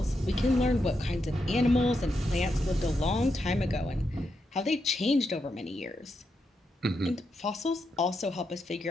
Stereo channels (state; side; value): normal; both; correlation 0.83